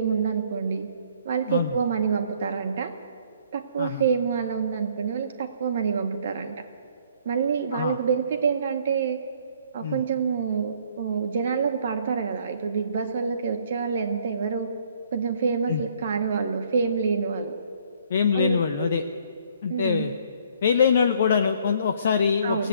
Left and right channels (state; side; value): inverted; both; correlation -0.62